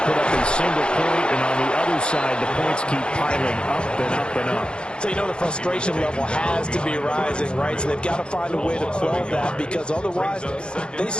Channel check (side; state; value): right; late; 0.053 ms